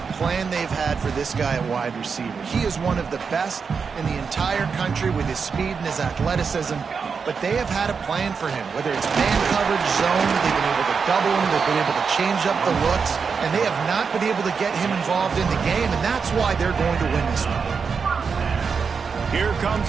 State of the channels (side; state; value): left; quieter; 5.6 dB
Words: plan they've had for this guy at wide receiver. He is one of the best in the entire country with his speed and his athleticism, but they have had a plan for him, whether it's man coverage, zone, they've been able to double him, they've been able to change up the looks, and they have not been able to get him involved in the game, and that's why they're going to win this one. Here